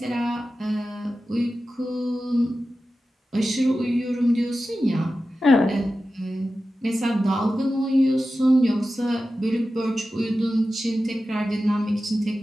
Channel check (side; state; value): both; normal; correlation 0.93